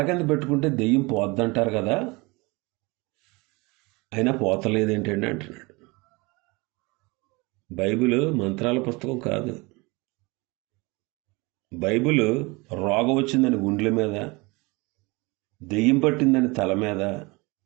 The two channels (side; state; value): left; quieter; 25.5 dB